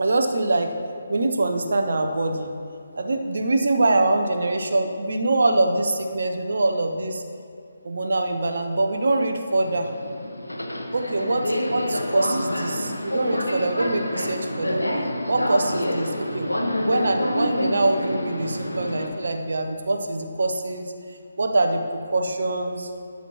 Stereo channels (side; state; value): both; inverted; correlation -0.90